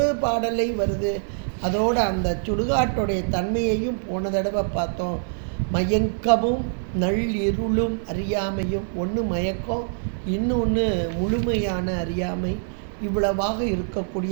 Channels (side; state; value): left; silent; digital silence